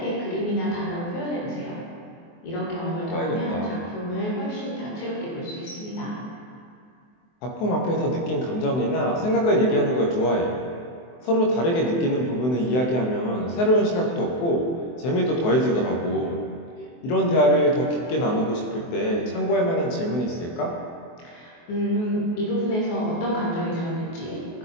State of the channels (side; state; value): right; late; 24 ms